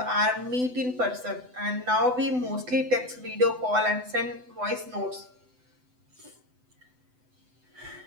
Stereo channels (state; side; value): late; left; 7.9 ms